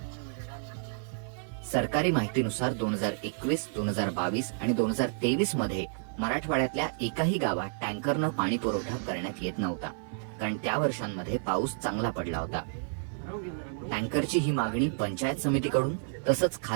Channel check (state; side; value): silent; left; 57 dB below the other